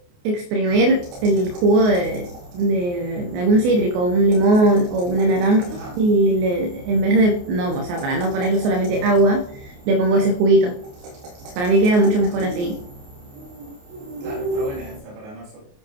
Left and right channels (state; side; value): late; left; 28 ms